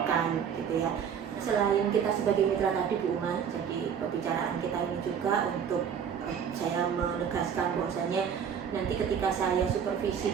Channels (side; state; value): left; quieter; 7.7 dB